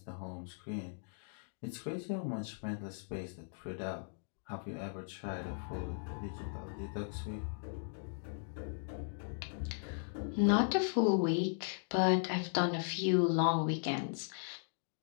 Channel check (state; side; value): silent; right; digital silence